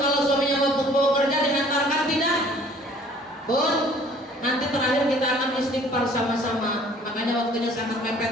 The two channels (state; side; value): normal; both; correlation 0.54